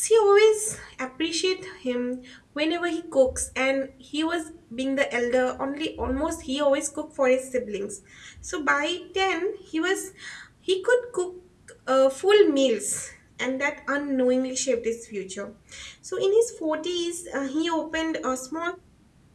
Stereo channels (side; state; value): both; identical; correlation 1.00